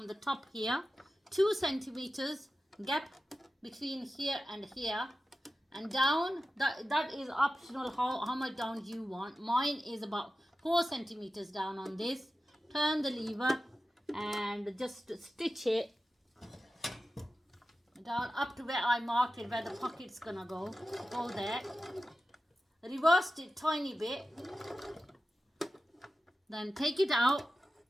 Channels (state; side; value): normal; both; correlation 0.93